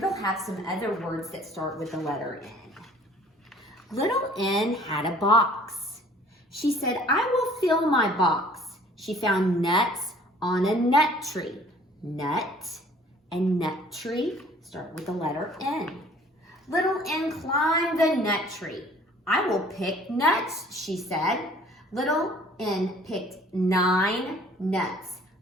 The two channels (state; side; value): normal; both; correlation 0.53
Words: have some other words that start with the letter N. Little N had a box. She said, I will fill my box. She found nuts on a nut tree. Nut and nut tree start with the letter N. Little N climbed the nut tree. I will pick nuts, she said. Little N picked 9 nuts.